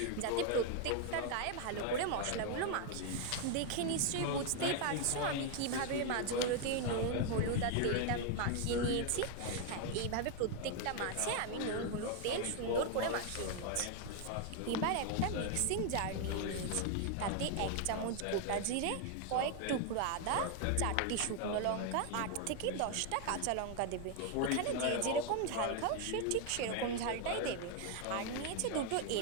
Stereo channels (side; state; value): both; different; correlation 0.00